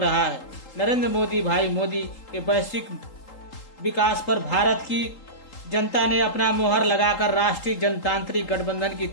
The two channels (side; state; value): right; late; 3.8 ms